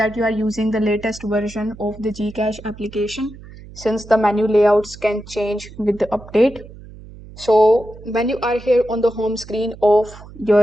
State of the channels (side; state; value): right; noise; hum, 18 dB below the sound